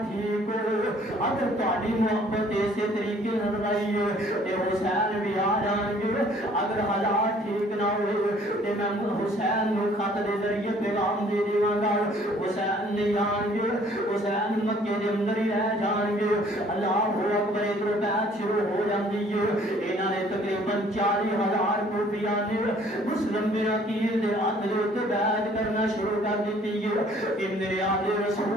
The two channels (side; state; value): both; normal; correlation 0.57